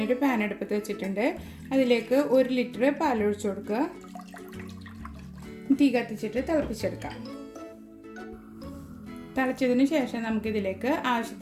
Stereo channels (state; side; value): identical; both; correlation 1.00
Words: പാൻ അടുപ്പത്ത് വെച്ചിട്ടുണ്ട്. അതിലേക്ക് 1 ലിറ്റർ പാൽ ഒഴിച്ചു കൊടുക്കുക. തീ കത്തിച്ചിട്ട് തിളപ്പിച്ചെടുക്കാം. തിളച്ചതിന് ശേഷം നമുക്കിതിലേക്ക്